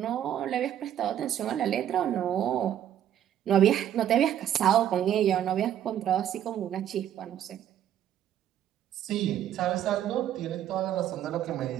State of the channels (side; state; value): left; quieter; 10.8 dB